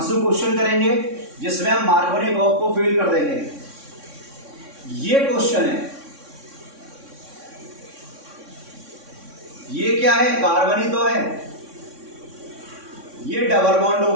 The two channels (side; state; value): left; late; 3.6 ms